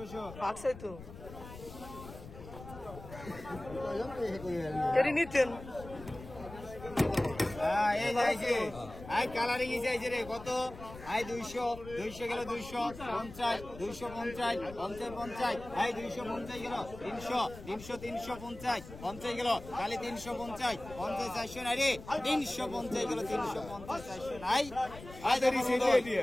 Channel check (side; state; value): left; noise; rumble, 15 dB below the sound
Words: পাকছে তো এরি নিতেন এই যাইছে আই কালারিং যাইছে রে কত আই 200 200 গেল 250 250 50 আই 250 গেল 300 300 350 50 গেল খালি 350 50 400 নাই রে 350 গেল 350 400 নাই আই